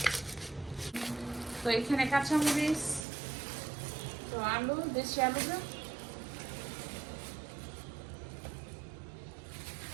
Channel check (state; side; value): drops out; left; at 3.1 s